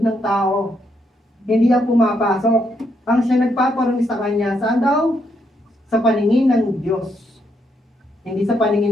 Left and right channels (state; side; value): normal; both; correlation 0.77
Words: ng tao, hindi ang pumapasok. Ang siya nagpaparumi sa kanya, saan daw? sa paningin ng Diyos. Hindi sa